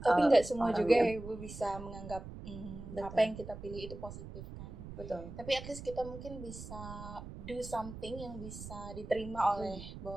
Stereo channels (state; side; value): noise; right; rumble, 11 dB below the sound